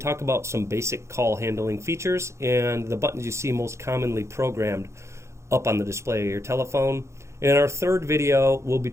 about some basic call handling features and the buttons you see most commonly programmed up on the display of your telephone. In our third video, we'll be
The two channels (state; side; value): late; left; 0.14 ms